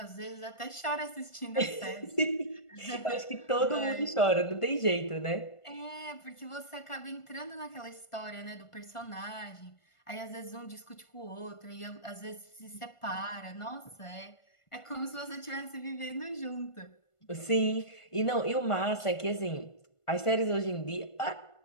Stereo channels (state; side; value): late; right; 1.5 ms